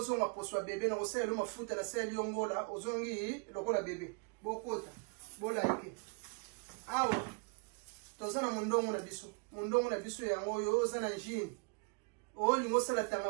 zonga poswa bebe na kosala lo mafuta na sali yongola ozongi lokola bebe bokota bolike awa toza na mundongo na biso yango yo oza na njini o lingo sala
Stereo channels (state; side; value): quieter; left; 35.0 dB